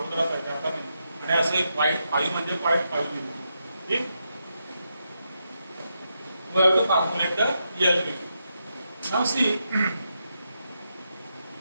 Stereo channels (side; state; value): both; inverted; correlation -0.84